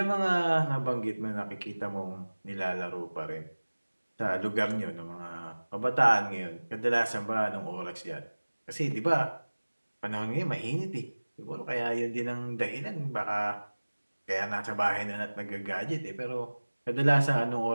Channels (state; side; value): inverted; both; correlation -1.00